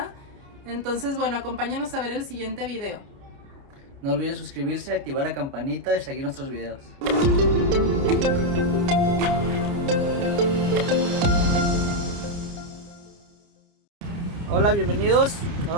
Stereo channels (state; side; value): late; left; 29 ms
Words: Entonces, bueno, acompáñanos a ver el siguiente video. No olviden suscribirse, activar la campanita y seguir nuestros videos. Hola, bienvenidos.